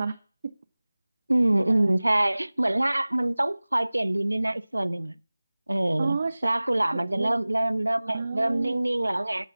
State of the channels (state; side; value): inverted; both; correlation -0.99